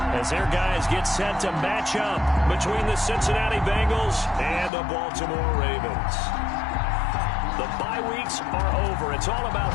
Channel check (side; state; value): right; drops out; at 4.7 s